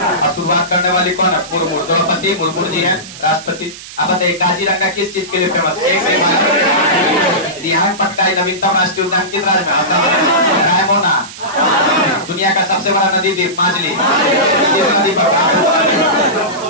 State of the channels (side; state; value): right; noise; hiss, 15 dB below the sound